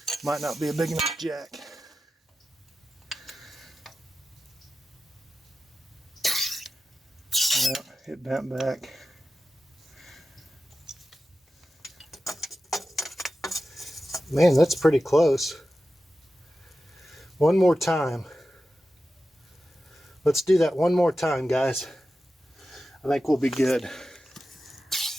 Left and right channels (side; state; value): both; normal; correlation 0.93